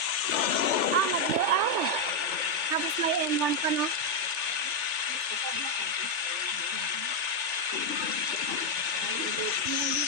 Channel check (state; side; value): late; left; 3.4 ms